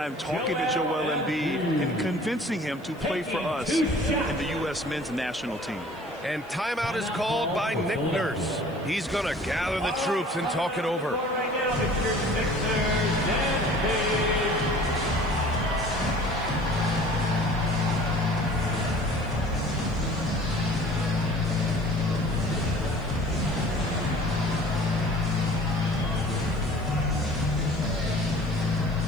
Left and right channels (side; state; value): left; noise; hiss, 29 dB below the sound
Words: talking to Joel Embiid and convincing him to play for us in the U.S. men's national team. And timeout is called by Nick Nurse. He's going to gather the troops and talk it over. Right now, it's your Sixers and Page.